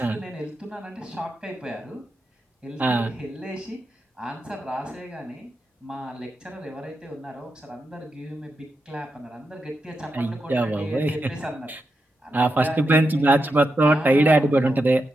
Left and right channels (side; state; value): both; normal; correlation 0.87